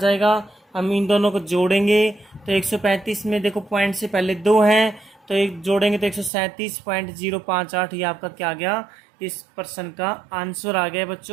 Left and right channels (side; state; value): left; drops out; at 6.3 s